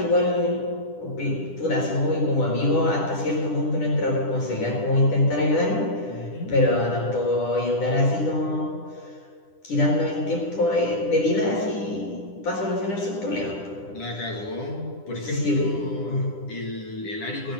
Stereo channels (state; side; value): late; right; 10 ms